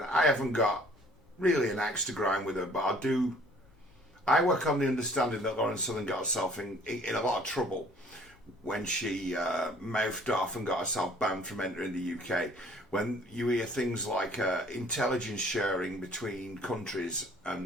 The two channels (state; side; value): normal; both; correlation 0.55